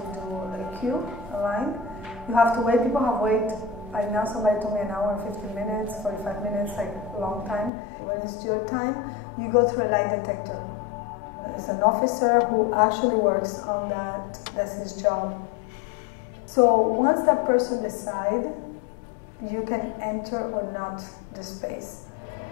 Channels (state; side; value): drops out; right; at 7.7 s